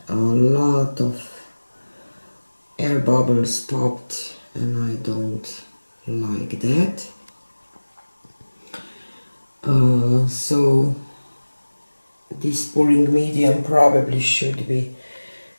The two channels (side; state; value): both; inverted; correlation -1.00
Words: a lot of air bubbles popped, and I don't like that. So this pouring medium probably should be